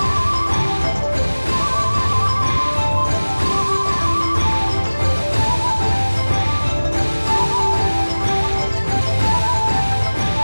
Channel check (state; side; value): inverted; both; correlation -1.00